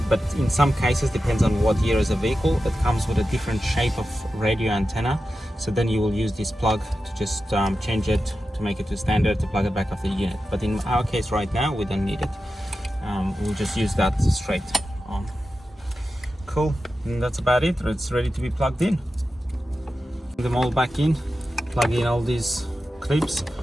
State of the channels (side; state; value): both; normal; correlation 0.92